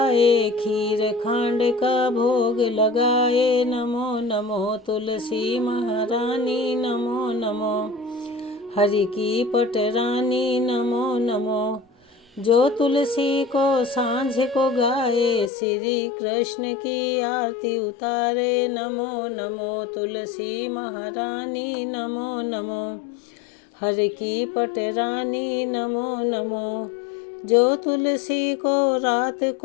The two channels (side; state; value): right; drops out; at 15.5 s